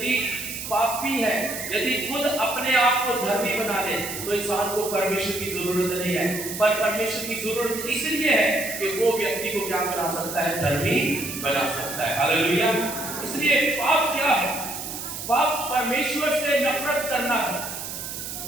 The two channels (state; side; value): noise; right; hiss, 7 dB below the sound